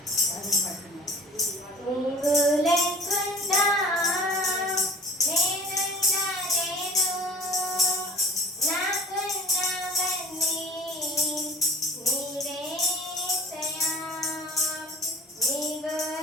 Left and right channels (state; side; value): normal; both; correlation 0.44